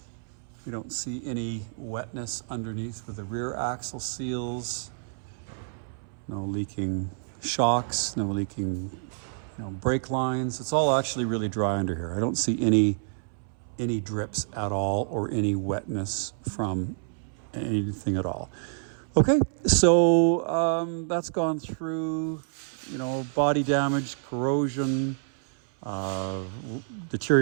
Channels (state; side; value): silent; left; 59 dB below the other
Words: We don't see any wetness underneath with the rear axle seals. no leaking shocks, no leaking brake lines. It's all actually really dry under here. I don't see any drips at all or any wetness from anything at all. Okay, so that's gone through, body damage, corrosion,